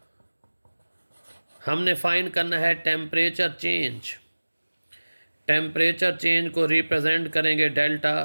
हमने फाइंड करना है टेम्परेचर चेंज। टेम्परेचर चेंज को रिप्रेजेंट करेंगे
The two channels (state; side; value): inverted; both; correlation -1.00